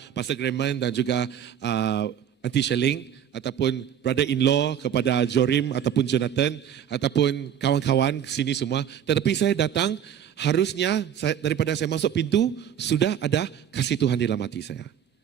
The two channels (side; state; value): left; quieter; 9.2 dB